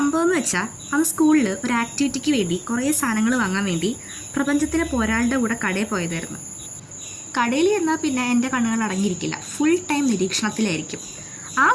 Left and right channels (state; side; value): identical; both; correlation 1.00